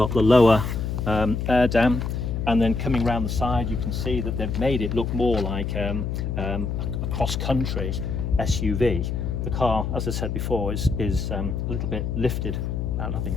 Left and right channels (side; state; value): left; noise; hum, 2 dB below the sound